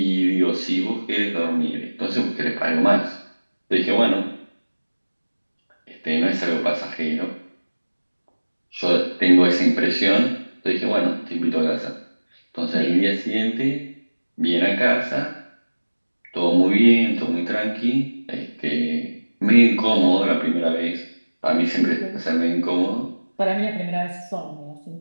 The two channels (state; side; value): inverted; both; correlation -1.00